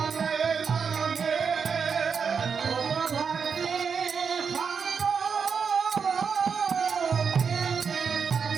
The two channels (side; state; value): left; quieter; 6.1 dB